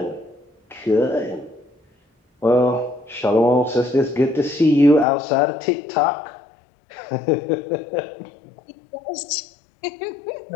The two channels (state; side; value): drops out; right; at 5.1 s